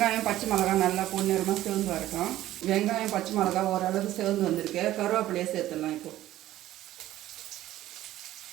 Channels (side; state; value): left; quieter; 14.3 dB